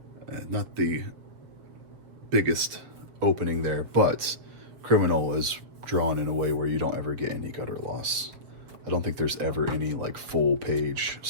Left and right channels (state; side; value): late; left; 7.6 ms